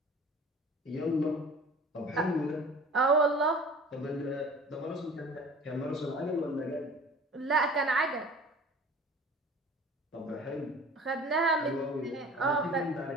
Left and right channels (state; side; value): normal; both; correlation 0.44